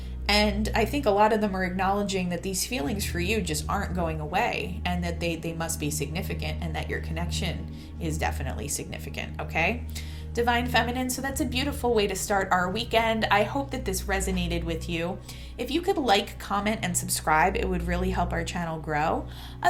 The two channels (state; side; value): identical; both; correlation 1.00